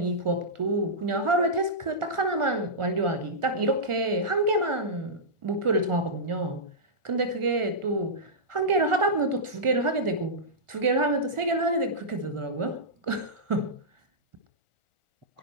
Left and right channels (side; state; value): left; late; 1.4 ms